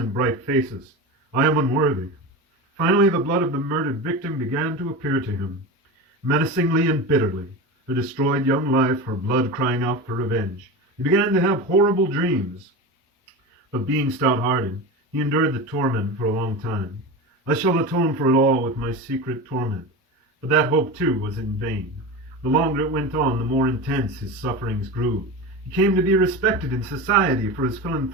bright faces. I am unworthy. Finally, the blood of the murdered victim began to appear to him, menacingly and bitterly, her destroyed young life, her blood crying out for revenge. He began to have horrible dreams. But being stout-hearted, he endured the torment for a long time. I shall atone for it all with my secret torment. But that hope, too, was in vain. The longer it went on, the more intense his sufferings grew. He came to be respected in society for his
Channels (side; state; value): both; normal; correlation 0.26